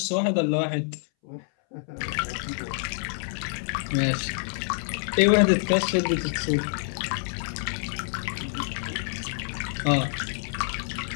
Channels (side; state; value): right; silent; 60 dB below the other